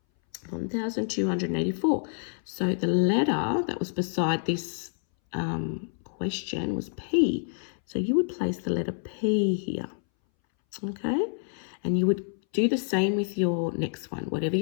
1,284. So the letter that was beside this question was P. So you would place the letter P here, okay? And you would do the same with your next one. Whatever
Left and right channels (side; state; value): right; silent; 59 dB below the other